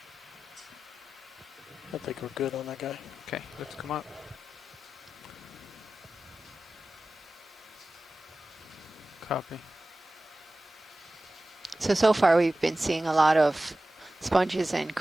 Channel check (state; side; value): normal; both; correlation 0.95